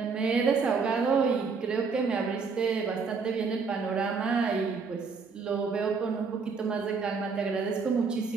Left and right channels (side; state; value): left; quieter; 5.1 dB